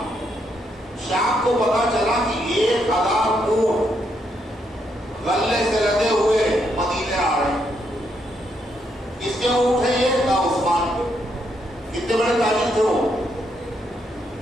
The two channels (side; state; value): both; normal; correlation 0.77